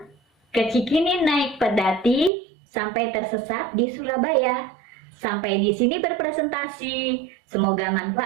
kecikini naik pedati sampai tersesat di Surabaya. Sampai di sini berpresentasi. Semoga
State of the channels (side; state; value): left; drops out; at 2.3 s